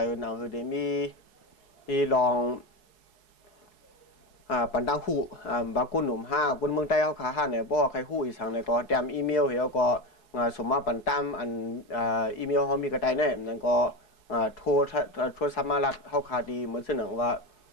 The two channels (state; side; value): late; right; 4.7 ms